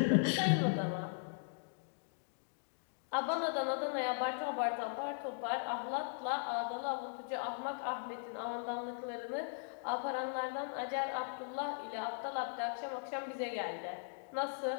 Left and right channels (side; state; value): right; silent; digital silence